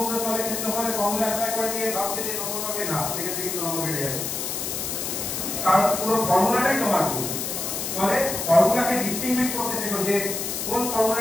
তলের ক্ষেত্রফলের ফর্মুলা অ্যাপ্লাই করে দিয়ে ভাবছে যে নম্বর পাবে, না, সেক্ষেত্রে কিন্তু নম্বর বেড়ে যাবে, কারণ পুরো ফর্মুলাটাই তোমার ভুল। ফলে ফর্মুলাকে ডিস্টিংগুইশ করতে শেখো যে কোন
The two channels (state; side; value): noise; left; hiss, 3 dB below the sound